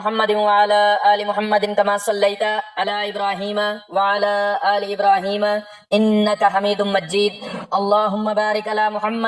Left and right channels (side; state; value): both; identical; correlation 1.00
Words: وعلی آل محمد کما صلیت علی ابراہیم وعلی آل ابراہیم انک حمید مجید۔ اللہم بارک علی